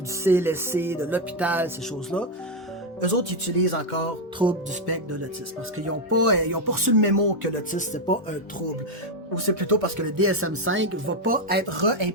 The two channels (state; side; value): normal; both; correlation 0.04